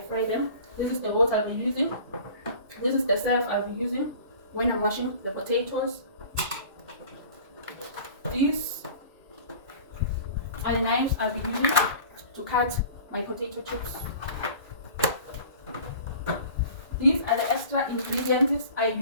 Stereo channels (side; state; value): both; inverted; correlation -0.43